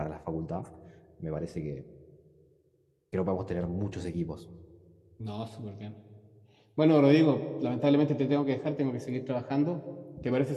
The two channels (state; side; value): identical; both; correlation 1.00